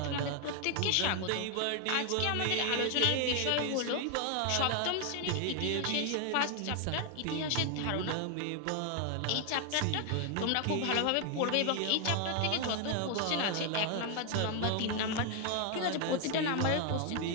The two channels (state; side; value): different; both; correlation 0.01